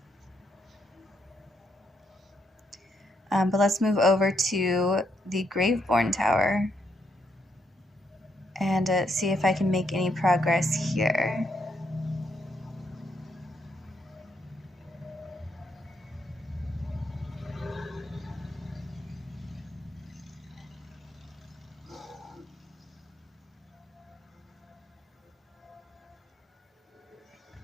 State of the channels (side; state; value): both; normal; correlation 0.76